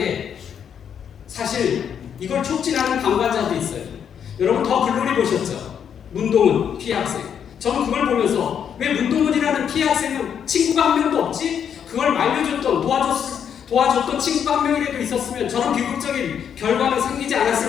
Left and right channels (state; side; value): quieter; right; 8.2 dB